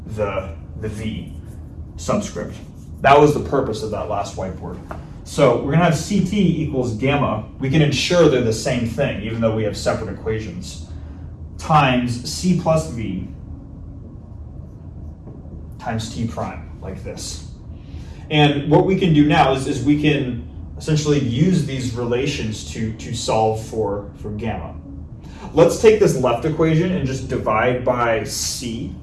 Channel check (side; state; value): both; identical; correlation 1.00